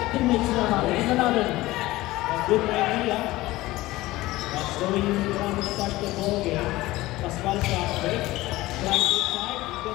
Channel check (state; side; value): quieter; right; 18.2 dB